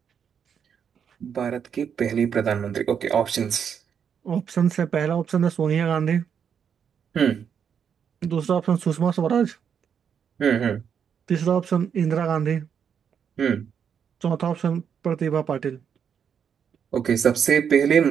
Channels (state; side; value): quieter; left; 7.6 dB